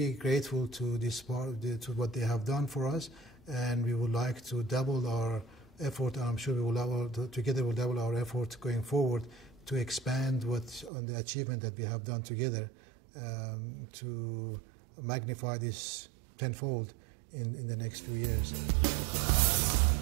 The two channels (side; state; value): left; drops out; at 10.9 s